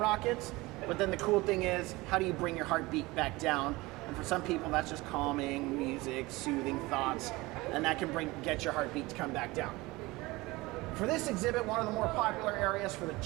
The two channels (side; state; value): left; quieter; 21.5 dB